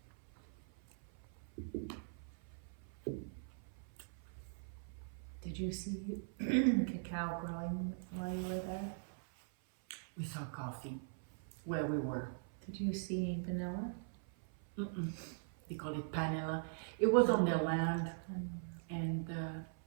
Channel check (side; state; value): left; silent; 50 dB below the other